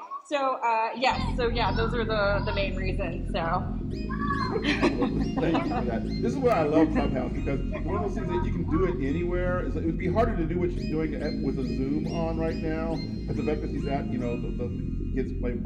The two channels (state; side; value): identical; both; correlation 1.00